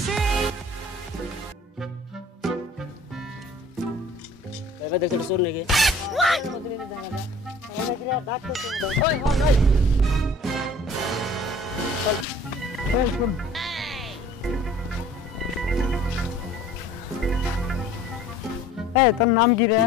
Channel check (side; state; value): both; normal; correlation 0.49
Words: এবার দেখতে শুন নাকি ওই হন ওই চল শুন এই তোর নাম কি রে